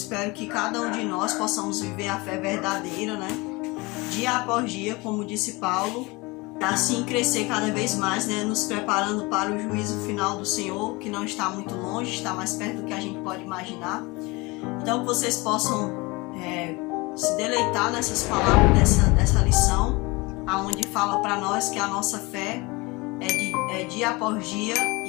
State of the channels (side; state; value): right; quieter; 24.5 dB